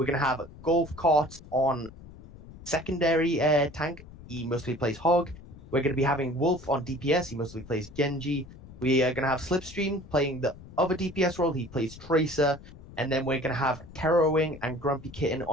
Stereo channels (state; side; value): noise; left; rumble, 18 dB below the sound